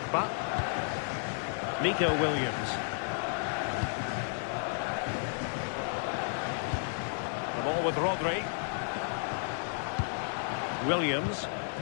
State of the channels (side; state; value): right; silent; 56 dB below the other